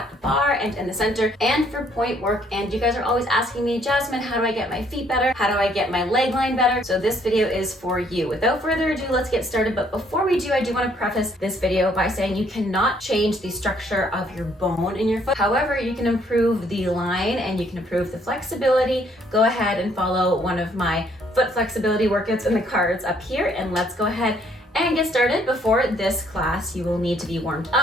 the bar and in the center and for point work. And you guys are always asking me, Jasmine, how do I get my feet better? How do I get my leg line better? So this video is for you. Without further ado, let's get started. But before we do, I do want to preface this video by saying you cannot change the structure of your bone in your foot. However, you can improve the line and you can improve the flexibility. Go ahead and follow one of my foot flexibility workouts in the cards up here, and let's go ahead and get started. Before this class, you will need to be warmed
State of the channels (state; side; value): normal; both; correlation 0.66